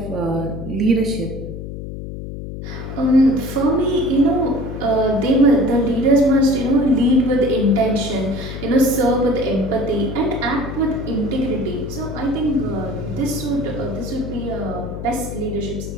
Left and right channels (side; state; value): left; noise; hum, 9 dB below the sound